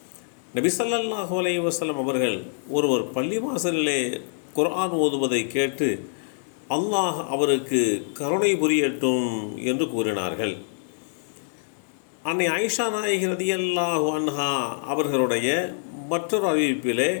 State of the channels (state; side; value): silent; right; digital silence